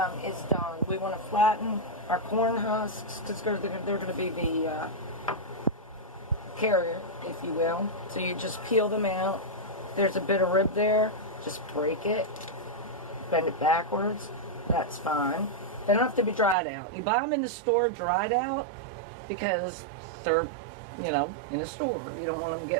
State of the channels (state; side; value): drops out; left; at 16.6 s